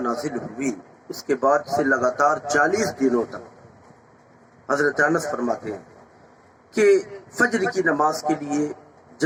ہوئی، اس کے بعد سے لگاتار 40 دنوں تک حضرت انس فرماتے ہیں کہ فجر کی نماز کے لیے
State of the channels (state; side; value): identical; both; correlation 1.00